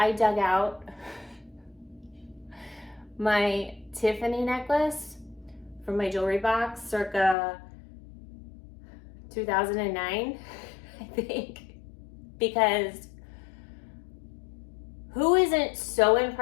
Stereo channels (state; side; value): drops out; right; at 7.4 s